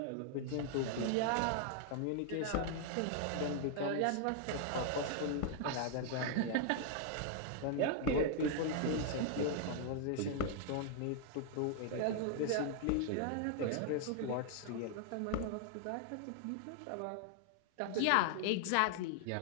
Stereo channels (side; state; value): both; different; correlation 0.00